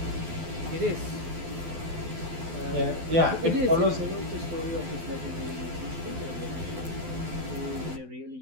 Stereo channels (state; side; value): late; left; 12 ms